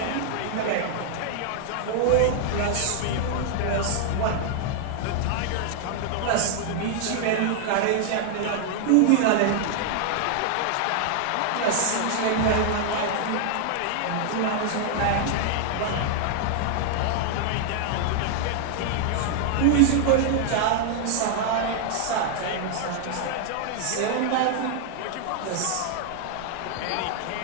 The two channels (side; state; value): both; different; correlation 0.00